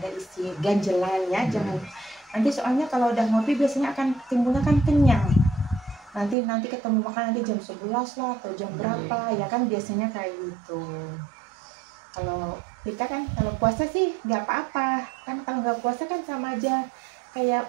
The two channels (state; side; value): drops out; left; at 6.4 s